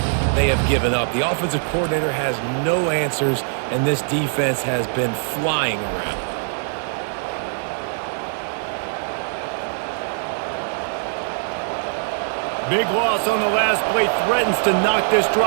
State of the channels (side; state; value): left; silent; digital silence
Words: they have given up. The offensive coordinator has no answers, and this defense has been flying around. Big loss on the last play threatens to knock this